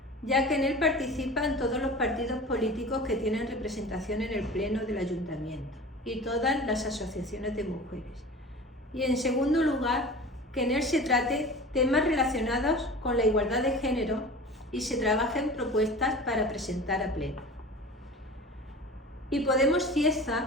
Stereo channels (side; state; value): both; normal; correlation 0.37